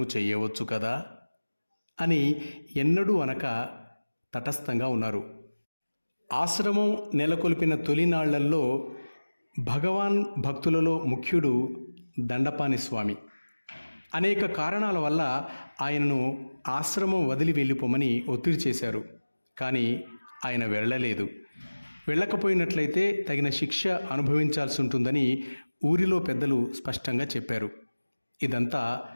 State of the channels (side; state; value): both; inverted; correlation -1.00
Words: చేయవచ్చు కదా అని ఎన్నడూ అనక తటస్థంగా ఉన్నారు. ఆశ్రమం నెలకొల్పిన తొలినాళ్లల్లో భగవాన్ భక్తులలో ముఖ్యుడు దండపాని స్వామి. అనేక కారణాల వల్ల ఆయనను ఆశ్రమం వదిలి వెళ్ళిపోమని ఒత్తిడి చేశారు. కానీ ఆయన వెళ్ళలేదు. వెళ్ళకపోయినట్లయితే తగిన శిక్ష అనుభవించాల్సి ఉంటుందని ఊరిలో పెద్దలు స్పష్టంగా చెప్పారు. ఇదంతా